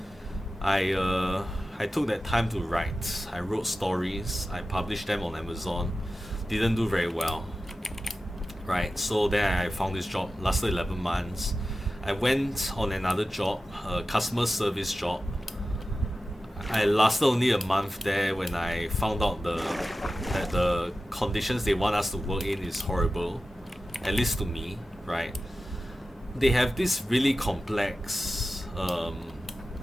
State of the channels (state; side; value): normal; both; correlation 0.94